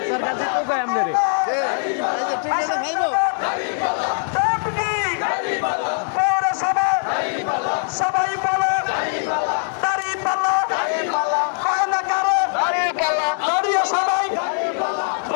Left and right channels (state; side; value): silent; right; 65 dB below the other